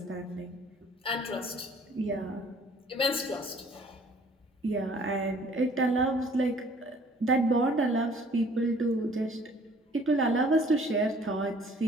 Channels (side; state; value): both; normal; correlation 0.55